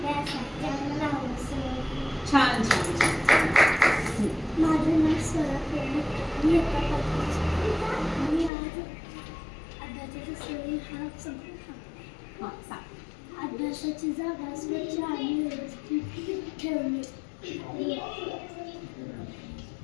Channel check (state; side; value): drops out; right; at 8.5 s